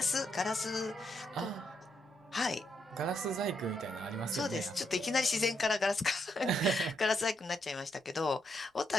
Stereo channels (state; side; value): normal; both; correlation 0.78